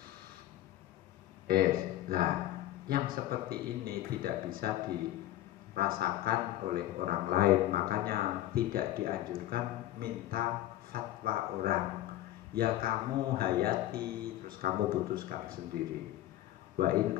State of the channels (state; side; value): quieter; right; 14.3 dB